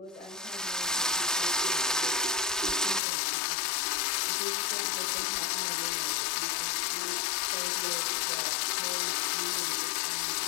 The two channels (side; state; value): right; drops out; at 3.0 s